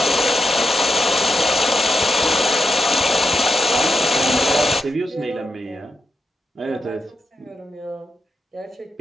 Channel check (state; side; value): normal; both; correlation 0.86